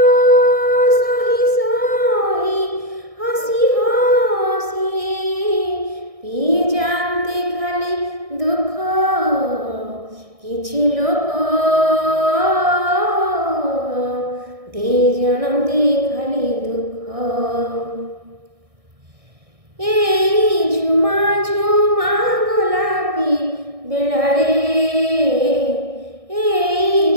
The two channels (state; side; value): late; left; 1.6 ms